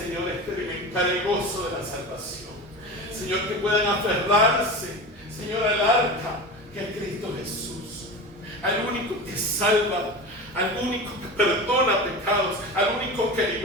experimentar el gozo de la salvación. Señor, que puedan aferrarse, Señor, al arca que es Cristo Jesús, al único que salva, al único que perdona pecados, al único que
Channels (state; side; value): normal; both; correlation 0.29